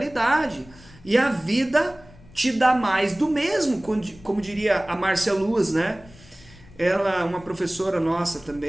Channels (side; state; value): left; noise; rumble, 23 dB below the sound